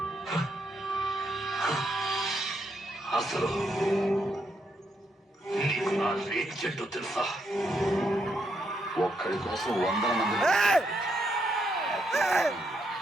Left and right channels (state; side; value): normal; both; correlation 0.78